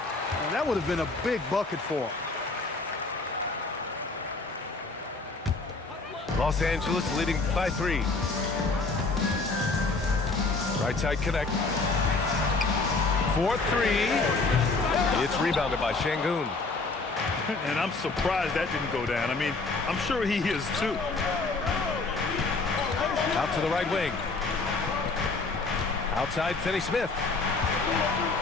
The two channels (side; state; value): right; quieter; 3.7 dB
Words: that would have been a big bucket for him. Los Angeles leading by 3. Right side connect. 4-3. It's rebounded by Şengün. And I'm surprised that didn't go down. I mean, I'm sure he is too. Out to the right wing. Outside Finney-Smith.